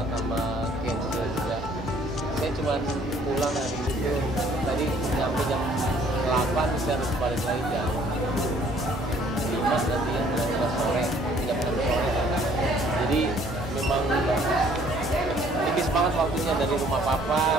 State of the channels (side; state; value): both; normal; correlation 0.59